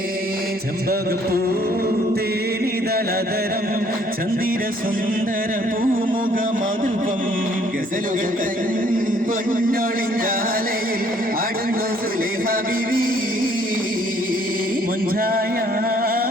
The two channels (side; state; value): both; normal; correlation 0.62